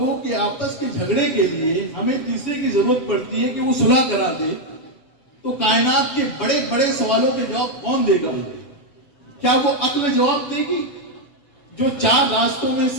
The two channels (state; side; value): late; right; 7.6 ms